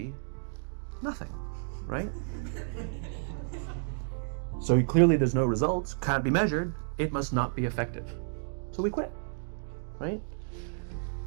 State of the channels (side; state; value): left; silent; digital silence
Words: nothing, right? So clearly there's no results, can't be measured, it must not be effective. So we quit, right?